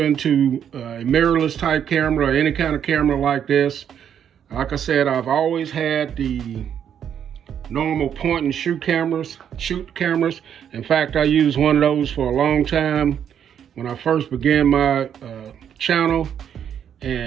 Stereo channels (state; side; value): quieter; left; 8.8 dB